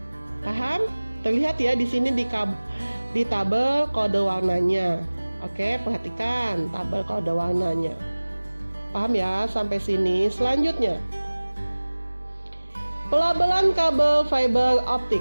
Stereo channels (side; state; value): both; inverted; correlation -1.00